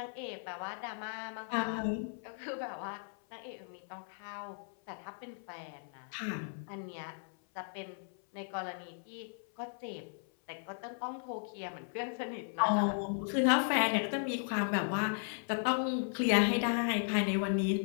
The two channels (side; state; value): right; silent; 54 dB below the other